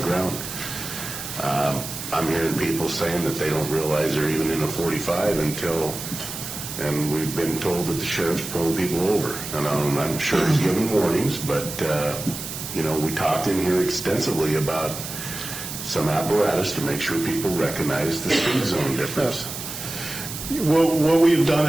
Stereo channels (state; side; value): noise; right; hiss, 8 dB below the sound